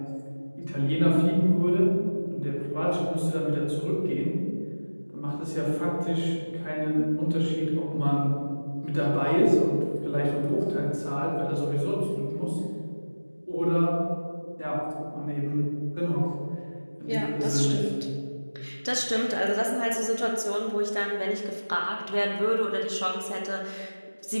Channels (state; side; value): inverted; both; correlation -1.00